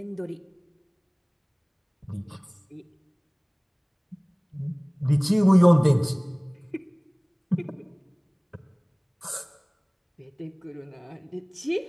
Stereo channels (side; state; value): both; identical; correlation 1.00